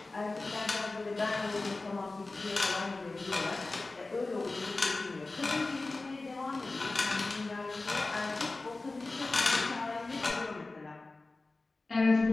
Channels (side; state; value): right; quieter; 3.3 dB